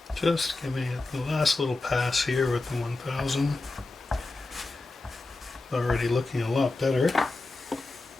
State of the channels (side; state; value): right; quieter; 3.3 dB